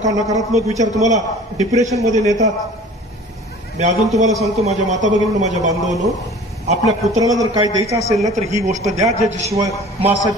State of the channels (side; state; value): both; normal; correlation 0.45